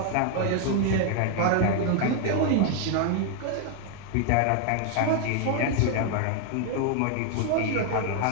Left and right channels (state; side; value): different; both; correlation 0.00